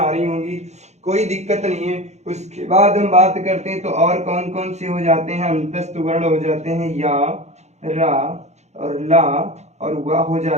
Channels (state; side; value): late; left; 0.33 ms